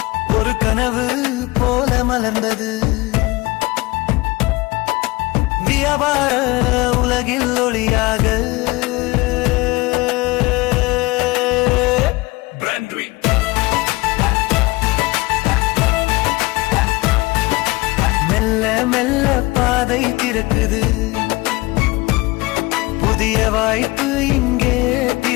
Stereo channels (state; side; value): quieter; right; 22.0 dB